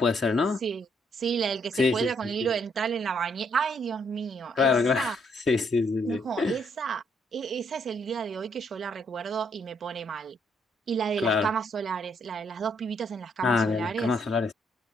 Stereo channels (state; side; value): normal; both; correlation 0.71